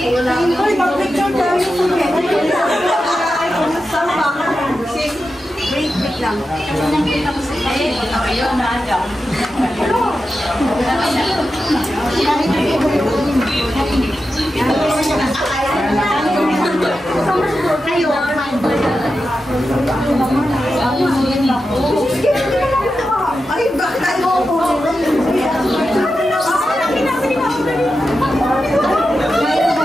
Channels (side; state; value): both; normal; correlation 0.90